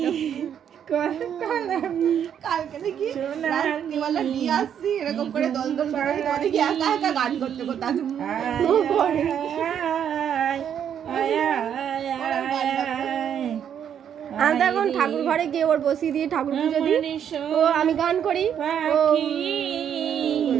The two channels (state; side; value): quieter; left; 8.9 dB